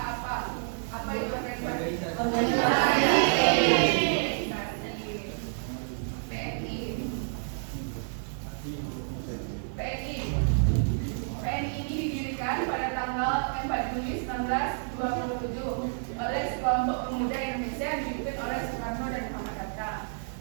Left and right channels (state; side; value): silent; left; digital silence